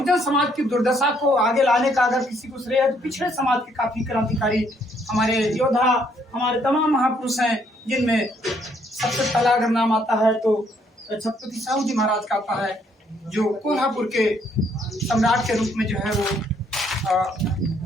समाज की दुर्दशा को आगे लाने का अगर किसी को श्रेय है तो पिछड़े समाज के काफी क्रांतिकारी हमारे योद्धा, हमारे तमाम महापुरुष हैं, जिनमें सबसे पहला अगर नाम आता है तो छत्रपति साहू जी महाराज का आता है, जो कोल्हापुर के सम्राट के रूप में जो है वो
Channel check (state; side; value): normal; both; correlation 0.68